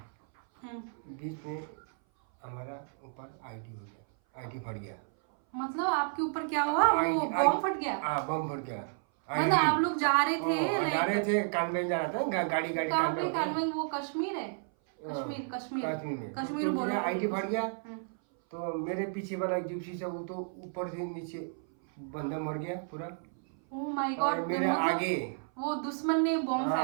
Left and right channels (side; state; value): left; silent; 56 dB below the other